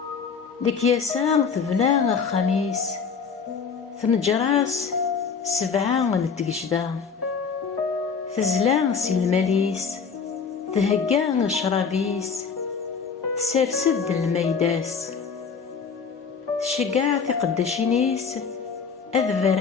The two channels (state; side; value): quieter; right; 5.8 dB